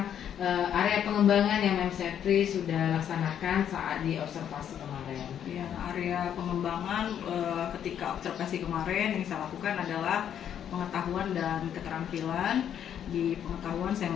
area pengembangan yang Mem Sepri sudah laksanakan saat di observasi kemarin? Ya, area pengembangan ketika observasi kemarin yang saya lakukan adalah pengetahuan dan keterampilan. Di pengetahuan saya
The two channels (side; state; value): right; quieter; 9.4 dB